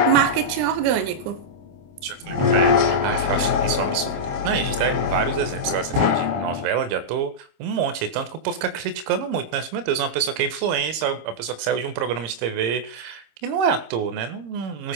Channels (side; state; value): left; late; 26 ms